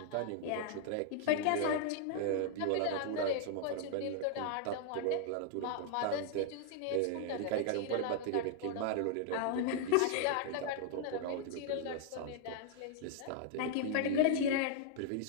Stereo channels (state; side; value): different; both; correlation 0.00